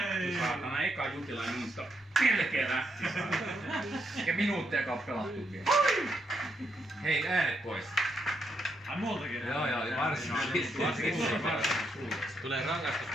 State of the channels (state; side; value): normal; both; correlation 0.79